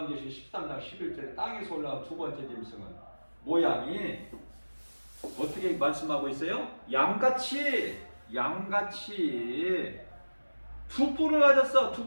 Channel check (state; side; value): inverted; both; correlation -1.00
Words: 13장 11절에 땅에서 올라온 두 번째 짐승은 모양이 어떻게 말씀하고 있어요? 양같이 양같이 두 뿔을 가졌어.